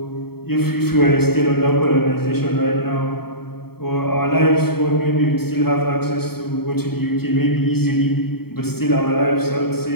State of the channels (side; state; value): right; late; 0.95 ms